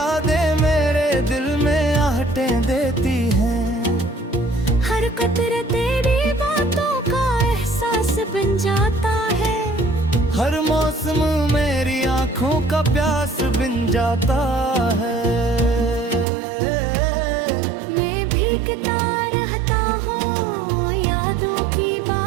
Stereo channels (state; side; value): drops out; left; at 16.2 s